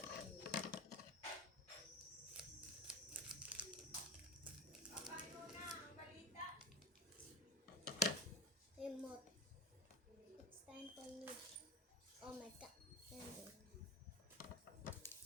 Remote. It's time for me. Oh my god.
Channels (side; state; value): both; normal; correlation 0.29